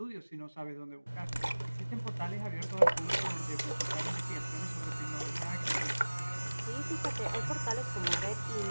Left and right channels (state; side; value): inverted; both; correlation -1.00